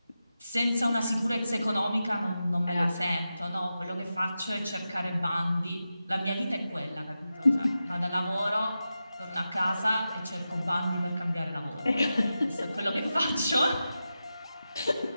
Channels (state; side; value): inverted; both; correlation -0.91